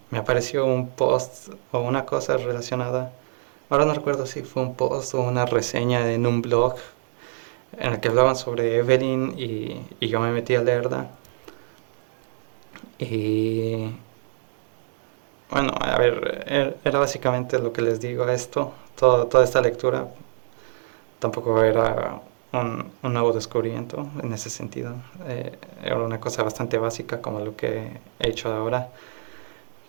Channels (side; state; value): left; silent; digital silence